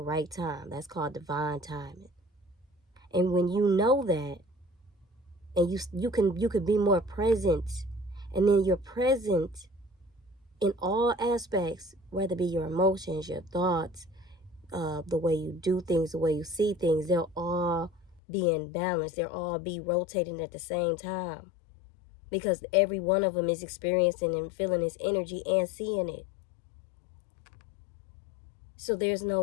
time. That's called divine timing. And when you know that, and you can be more present, and then you're present in all aspects, whether it be your emotions, your thoughts, the way you do things, the way you see things, they'll all be in balance. They'll all be rotating at the same time, because every one of them is experiencing and feeling this energy and seeing it. So there's no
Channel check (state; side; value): drops out; right; at 18.2 s